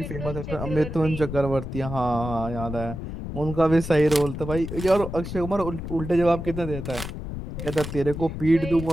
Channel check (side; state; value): left; noise; rumble, 7 dB below the sound